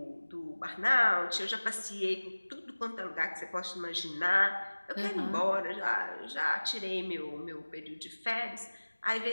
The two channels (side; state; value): both; inverted; correlation -1.00